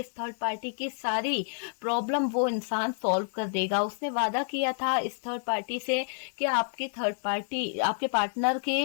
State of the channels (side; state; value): right; silent; digital silence